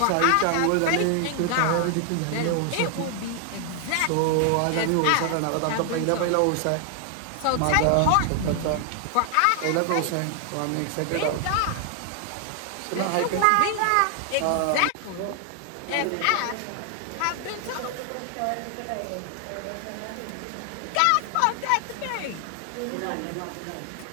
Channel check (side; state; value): both; different; correlation 0.00